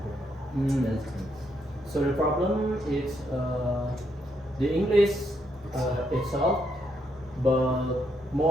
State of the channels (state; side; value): normal; both; correlation 0.76